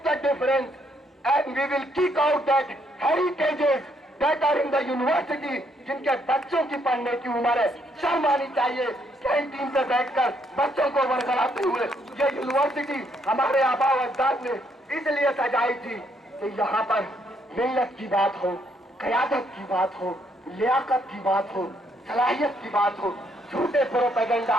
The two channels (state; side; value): normal; both; correlation 0.72